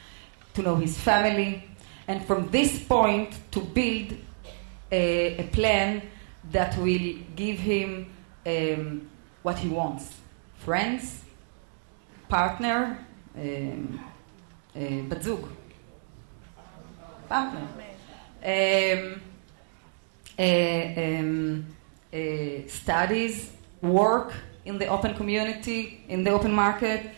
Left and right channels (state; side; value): silent; left; digital silence